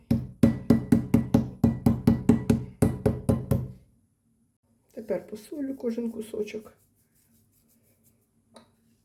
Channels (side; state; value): both; identical; correlation 1.00